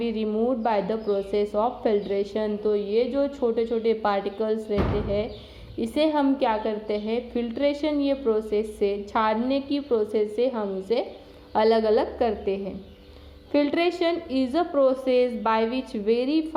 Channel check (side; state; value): both; identical; correlation 1.00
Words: removed bye the process of filtration. तो ये जो छोटे छोटे पार्टिकल्स रहते हैं इसे हम क्या करते हैं, फिल्ट्रेशन ये प्रोसेस से, छानने की प्रोसेस से हम इसे अलग अलग करते हैं। Filtration is a process by which very